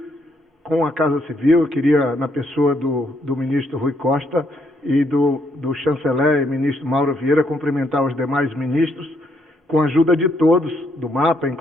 com a Casa Civil. Eu queria, na pessoa do ministro Rui Costa e do chanceler e ministro Mauro Vieira, cumprimentar os demais ministros. Com a ajuda de todos, do MAPA,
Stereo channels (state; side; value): normal; both; correlation 0.73